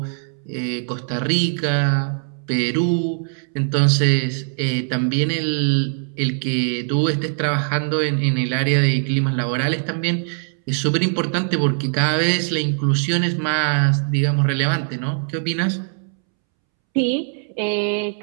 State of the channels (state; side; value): silent; left; 65 dB below the other